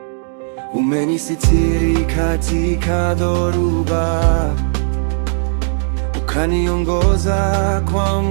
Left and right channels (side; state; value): left; silent; digital silence